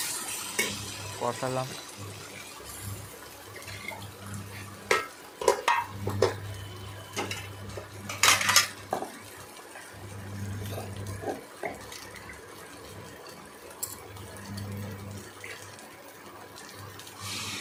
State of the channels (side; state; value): both; identical; correlation 1.00